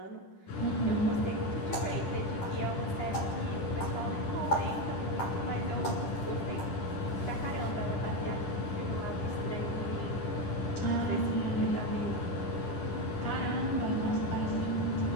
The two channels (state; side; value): late; right; 10 ms